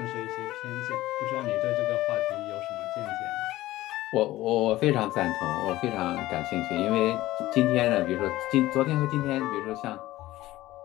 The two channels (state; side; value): quieter; right; 16.6 dB